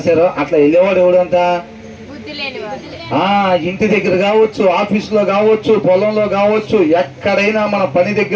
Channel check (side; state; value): both; identical; correlation 1.00